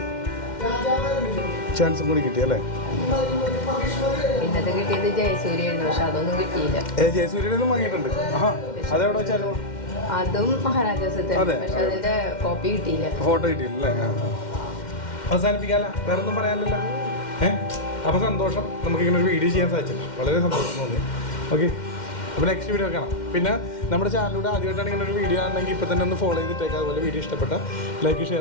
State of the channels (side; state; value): right; late; 2.1 ms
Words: ചാൻസ് കൂടി കിട്ടി അല്ലേ? പിന്നത് കിട്ടിയത് ജയസൂര്യായിരുന്നു, പക്ഷെ അതൊന്നും കിട്ടിയില്ല. ജയസൂര്യനും വാങ്ങിയിട്ടുണ്ട്. അതെവിടെ വെച്ചായിരുന്നു? അതും മഹാരാജാസ് തന്നെ, പക്ഷെ അതിന്റെ കോപ്പി കിട്ടിയില്ല, ഫോട്ടോ കിട്ടിയില്ലേ? അവസാനിപ്പിക്കാല്ല, വേറെ ഒന്നും പറയാനില്ലല്ലോ. അപ്പോൾ സന്തോഷം, നമുക്കിങ്ങനെ ഒരു വീഡിയോ ചെയ്യാൻ സാധിച്ചില്ല, വളരെ സന്തോഷം തോന്നി. ഓക്കെ, അപ്പോൾ നെക്സ്റ്റ് വീഡിയോ കാണാം. പിന്നെ നമ്മുടെ ചാനലിലൂടെ ആദ്യമായിട്ടാണ് ഇങ്ങനെ ഒരു വീഡിയോ ആണെങ്കിൽ ഇപ്പോൾ തന്നെ ഒന്ന് ഫോളോ ചെയ്തിട്ടേക്കാം. അതുപോലെ വീഡിയോ ഇഷ്ടപ്പെട്ട ലൈക്ക്